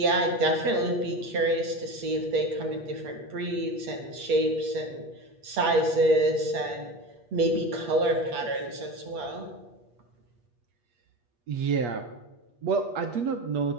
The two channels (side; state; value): left; late; 8.4 ms